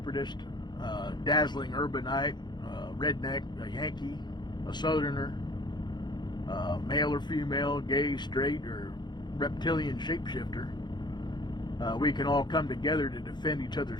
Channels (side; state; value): right; late; 0.21 ms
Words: dazzling urbanite, redneck, a Yankee, a southerner, male or female, gay, straight, or reptilian shapeshifter. We can all come together to defend each